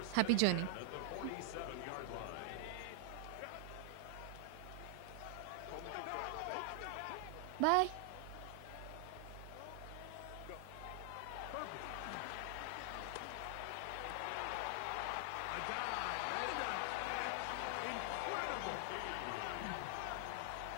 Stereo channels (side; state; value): both; different; correlation 0.00